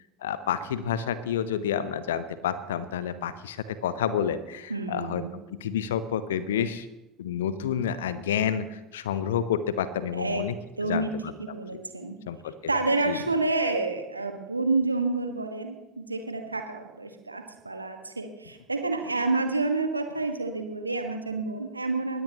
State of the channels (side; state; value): both; inverted; correlation -0.52